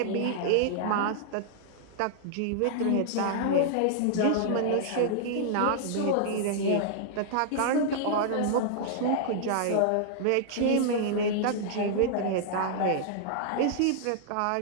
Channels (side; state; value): both; different; correlation -0.01